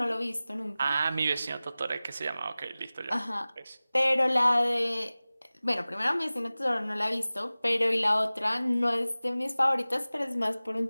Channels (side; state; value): both; inverted; correlation -0.98